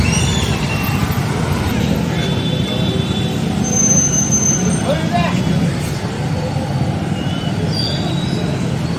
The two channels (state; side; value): identical; both; correlation 1.00